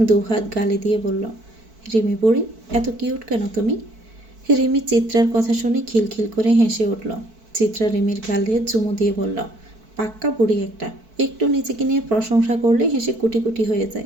2 হাত গালে দিয়ে বলল, রিমি বুড়ি, এত কিউট কেন তুমি? রিমি চিত্রার কথা শুনে খিলখিল করে হেসে উঠল। চিত্রা রিমির গালে চুমু দিয়ে বলল, পাক্কা বুড়ি একটা। একটু নিজেকে নিয়ে প্রশংসা করলে হেসে কুটি কুটি হয়ে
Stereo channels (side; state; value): left; late; 4.5 ms